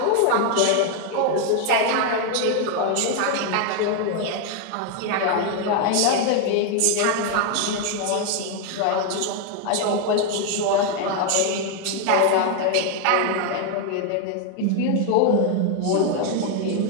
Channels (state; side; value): different; both; correlation 0.01